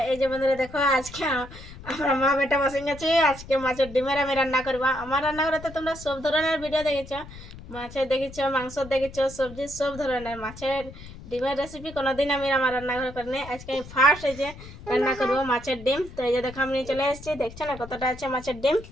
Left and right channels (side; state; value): left; noise; rumble, 16 dB below the sound